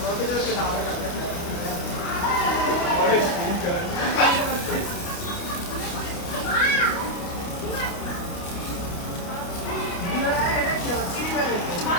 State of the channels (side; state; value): right; late; 29 ms